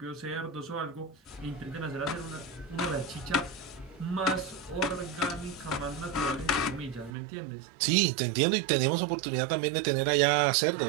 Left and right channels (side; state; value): left; drops out; at 7.1 s